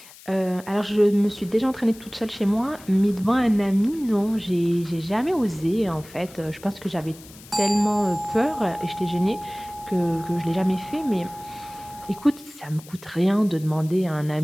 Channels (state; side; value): noise; left; hiss, 20 dB below the sound